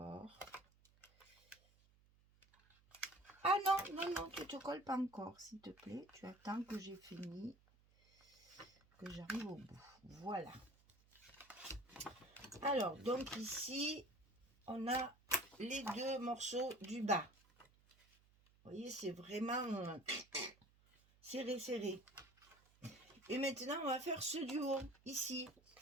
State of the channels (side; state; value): right; noise; hum, 30 dB below the sound